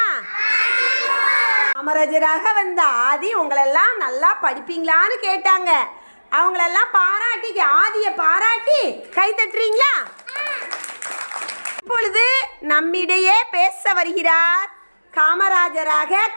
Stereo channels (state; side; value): inverted; both; correlation -1.00